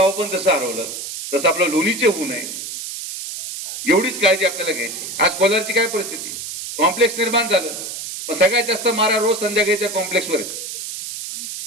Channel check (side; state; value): right; noise; hiss, 7 dB below the sound